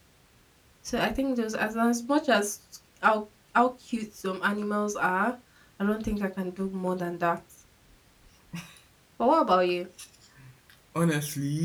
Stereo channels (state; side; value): identical; both; correlation 1.00